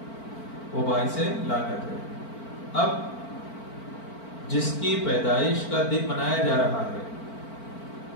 وہ باعث لعنت ہے۔ اب جس کی پیدائش کا دن منایا جا رہا ہے،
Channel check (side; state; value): right; late; 4.5 ms